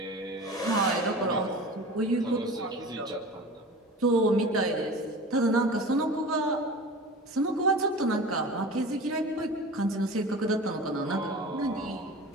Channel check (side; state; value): both; normal; correlation 0.36